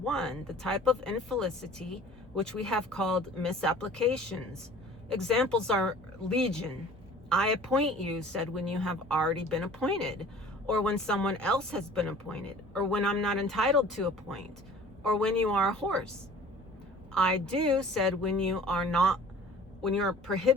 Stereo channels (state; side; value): normal; both; correlation 0.47